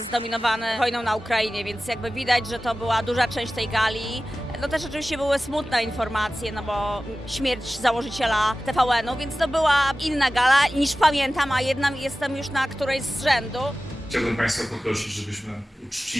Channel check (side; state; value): both; normal; correlation 0.96